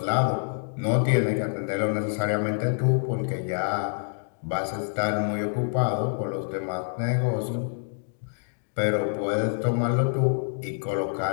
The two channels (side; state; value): right; silent; digital silence